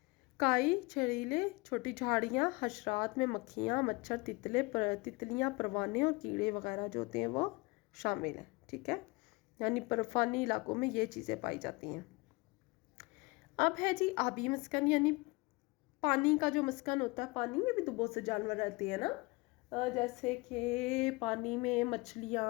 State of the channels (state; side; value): quieter; right; 25.3 dB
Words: काई, छड़ीले, छोटी झाड़ियाँ, हशरात में मक्खियाँ, मच्छर, तितलियाँ, परवाने और कीड़े वगैरह जो होते हैं वो शामिल हैं, ठीक है। यानी बर्फानी इलाकों में ये चीज़ें पाई जाती हैं। अब है जी आबी मस्कन, यानी पानी का जो मस्कन होता है। पानी में भी तो बहुत से जानवर रहते हैं ना, जैसे कि पानी में